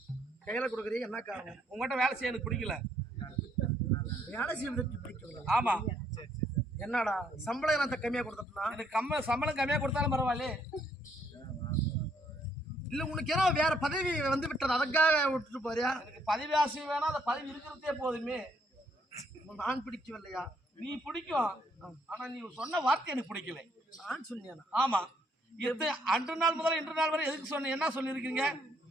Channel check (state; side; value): normal; both; correlation 0.69